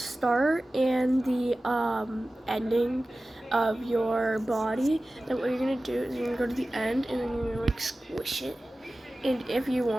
and the ending of your body. Then what you're gonna do is you're gonna go to the end, and then you're gonna like squish it. And if you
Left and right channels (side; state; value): both; normal; correlation 0.96